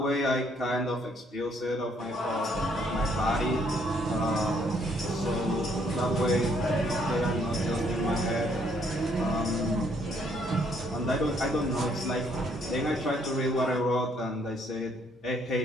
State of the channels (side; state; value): both; normal; correlation 0.68